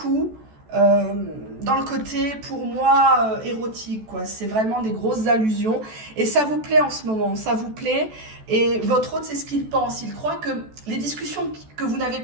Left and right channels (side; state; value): left; late; 14 ms